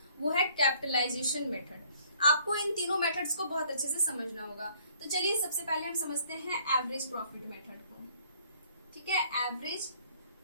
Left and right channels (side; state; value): both; inverted; correlation -0.60